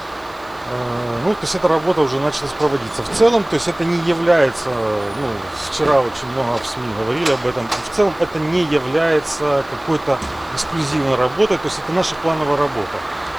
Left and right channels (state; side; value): noise; right; hiss, 28 dB below the sound